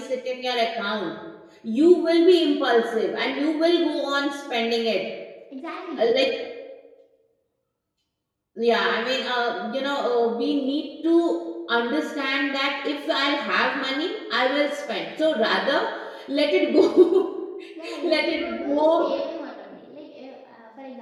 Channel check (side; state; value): both; identical; correlation 1.00